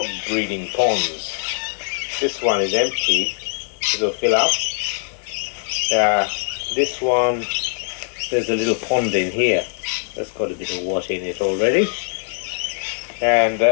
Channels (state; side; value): silent; right; 65 dB below the other